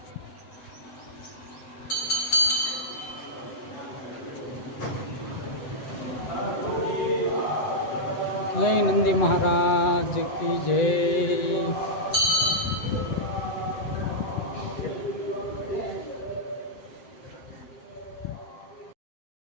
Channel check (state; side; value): late; right; 7.9 ms